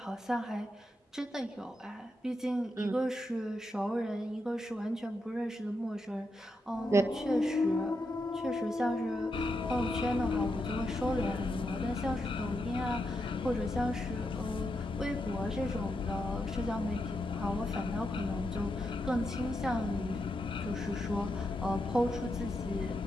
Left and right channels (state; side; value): normal; both; correlation 0.84